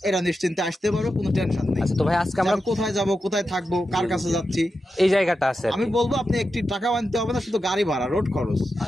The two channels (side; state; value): both; normal; correlation 0.89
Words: এরা নিশ্চিন্তে আসতে পারো, কোনো টেনশন নেই। তো ভাই, আজকে আমরা কোথায় যাব, কোথায় থাকবো, কার কাছে যাচ্ছি, এই জায়গাটা আছে। আমি বলবো আপনি একটি টাকা আনতে হবে না, শুধু গাড়ি ভাড়া, রোড খরচ